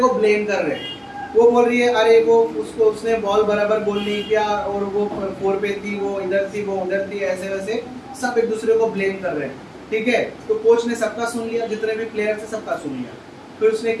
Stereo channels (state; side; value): identical; both; correlation 1.00